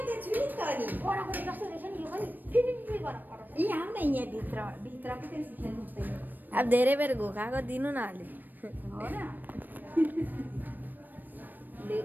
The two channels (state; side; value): late; left; 0.090 ms